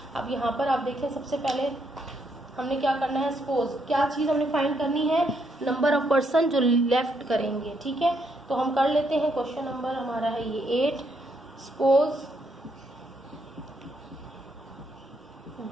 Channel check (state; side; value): normal; both; correlation 0.75